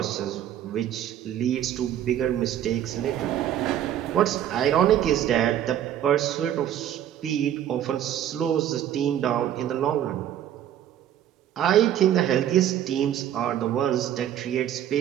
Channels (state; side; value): quieter; left; 10.9 dB